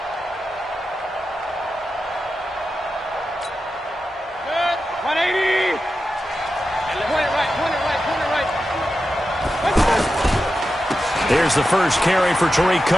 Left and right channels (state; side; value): normal; both; correlation 0.91